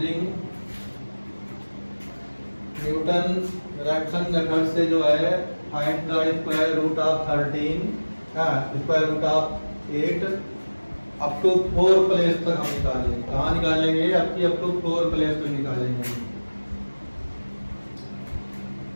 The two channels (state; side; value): inverted; both; correlation -1.00